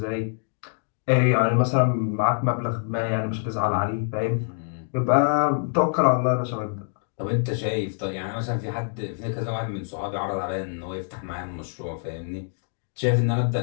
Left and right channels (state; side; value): silent; right; digital silence